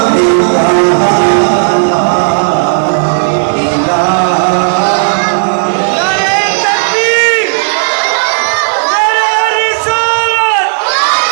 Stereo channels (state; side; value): silent; left; digital silence